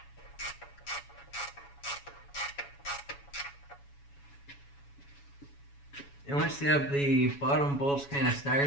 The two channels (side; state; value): right; late; 7.1 ms